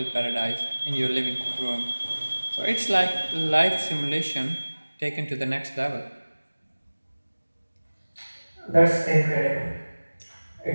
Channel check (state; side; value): inverted; both; correlation -1.00